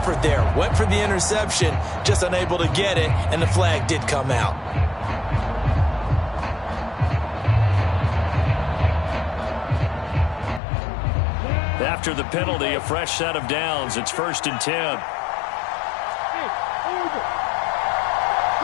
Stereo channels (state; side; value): drops out; right; at 10.6 s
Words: there. Went for the interception, just unable to get it, and the flag did come out. After the penalty, a fresh set of downs. It's 1st and 10. Hey, over.